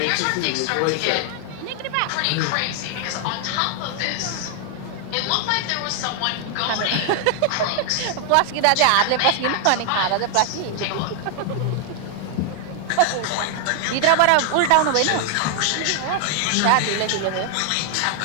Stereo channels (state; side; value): different; both; correlation 0.00